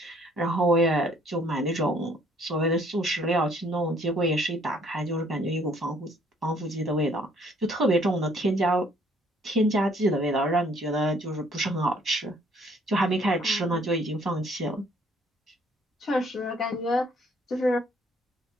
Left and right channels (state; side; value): normal; both; correlation 0.62